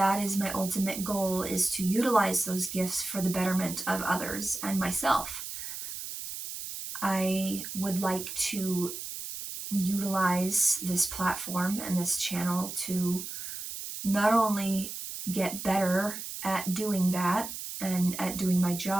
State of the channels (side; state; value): right; noise; hiss, 8 dB below the sound